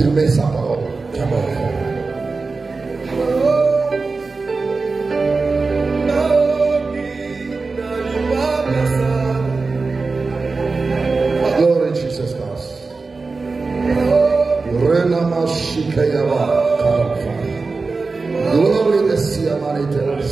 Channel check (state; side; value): quieter; left; 4.0 dB